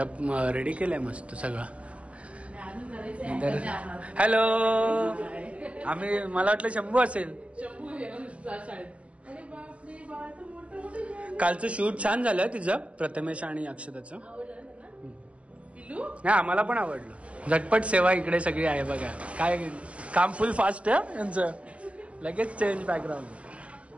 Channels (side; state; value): left; late; 0.062 ms